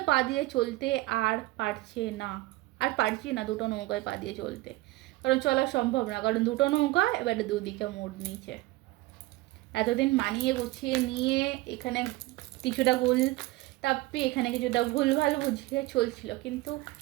পা দিয়ে চলতে আর পারছি না দুটো নৌকায় পা দিয়ে চলতে, কারণ চলা সম্ভব না, কারণ দুটো নৌকা এবারে দুদিকে মোড় নিয়েছে। এতদিন মানিয়ে গুছিয়ে নিয়ে এখানে কিছুটা ভুল তাপ্পি, এখানে কিছুটা ভুলভাল বুঝিয়ে চলছিল, কিন্তু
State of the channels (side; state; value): left; quieter; 19.3 dB